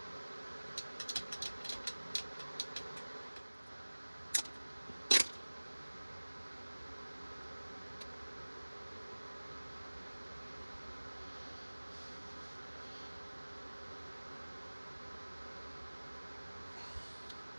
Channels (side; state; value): both; inverted; correlation -1.00